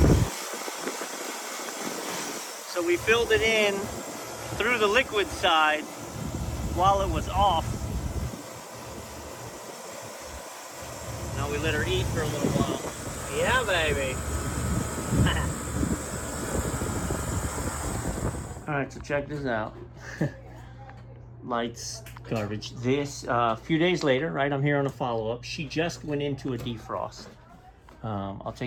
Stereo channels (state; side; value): identical; both; correlation 1.00